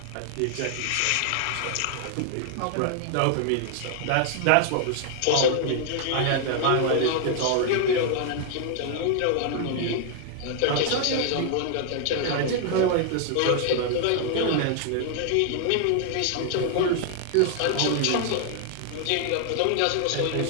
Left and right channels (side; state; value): both; different; correlation 0.00